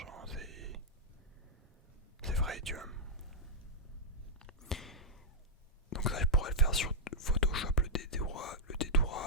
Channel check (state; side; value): normal; both; correlation -0.07